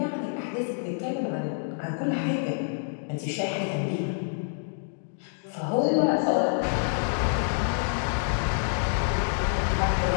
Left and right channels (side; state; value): right; silent; digital silence